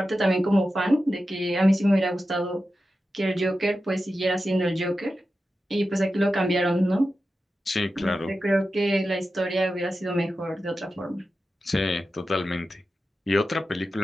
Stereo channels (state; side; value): normal; both; correlation 0.92